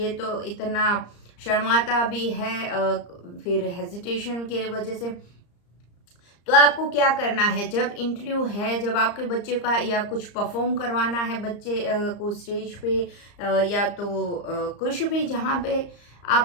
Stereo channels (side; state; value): right; late; 34 ms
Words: तो इतना शर्माता भी है फिर हेजिटेशन के वजह से। तो आपको क्या करना है, जब इंटरव्यू है, जब आपके बच्चे का या कुछ परफॉर्म करवाना है बच्चे को स्टेज पे, या तो कुछ भी जहाँ पे